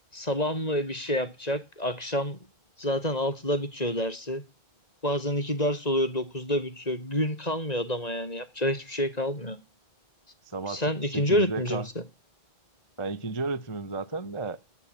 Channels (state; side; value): late; right; 1.9 ms